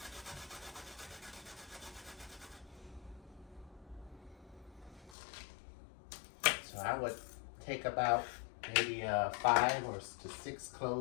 So I would take about maybe 5 or 6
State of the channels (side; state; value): right; drops out; at 5.2 s